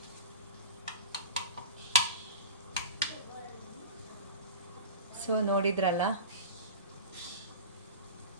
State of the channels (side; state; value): both; inverted; correlation -0.33